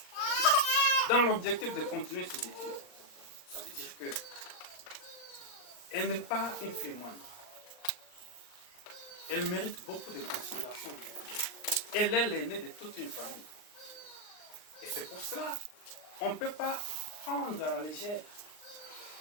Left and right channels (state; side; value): late; right; 39 ms